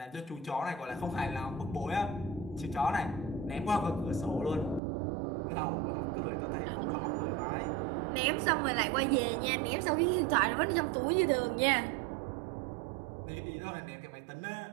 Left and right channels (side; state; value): left; drops out; at 4.8 s